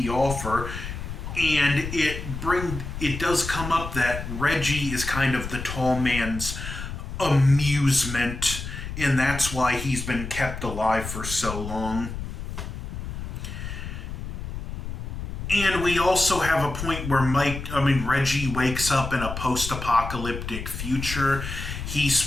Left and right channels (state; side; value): noise; left; rumble, 7 dB below the sound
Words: offer. And it does come up that Reggie is kind of the tall man's amusement, and that's why he's been kept alive for so long. And we also have a point where Reggie wakes up in a post-apocalyptic future. He's